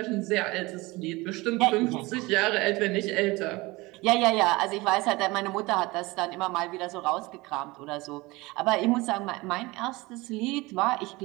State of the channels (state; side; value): quieter; left; 22.3 dB